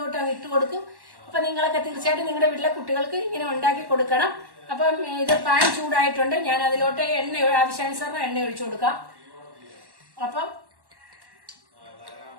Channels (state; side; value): late; left; 1.1 ms